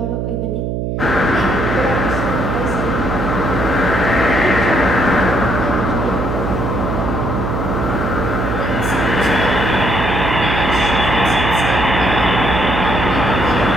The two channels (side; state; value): right; noise; hum, 2 dB below the sound